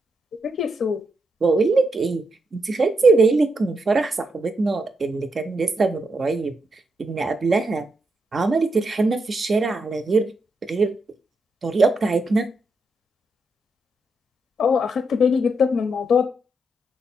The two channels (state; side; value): normal; both; correlation 0.81